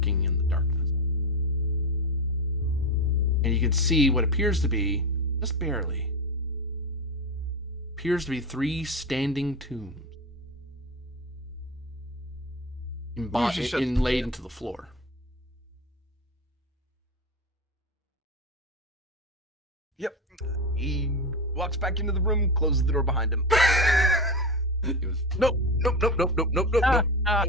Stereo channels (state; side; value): normal; both; correlation 0.19